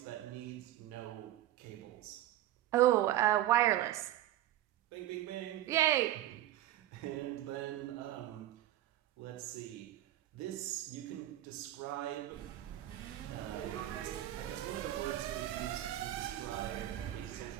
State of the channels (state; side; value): quieter; left; 13.7 dB